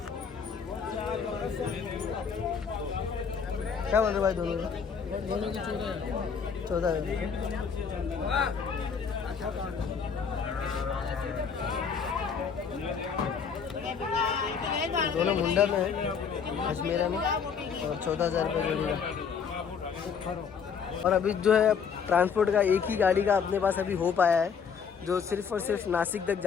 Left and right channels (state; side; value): quieter; right; 6.4 dB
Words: क्या बोल रहे भाई दोनों की 14 दोनों मुंडा में है, अजमेरा में, और 14,000 रुपये जोड़ी का। और अभी जो है ट्रांसपोर्ट का एक ही गाड़ी का अपने पास अभी हो पाया है, जो सिर्फ और सिर्फ नासिक तक